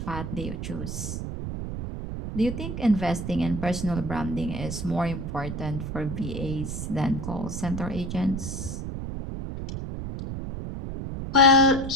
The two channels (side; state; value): right; noise; rumble, 5 dB below the sound